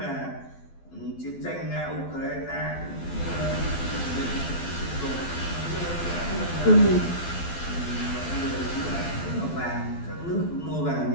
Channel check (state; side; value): late; right; 12 ms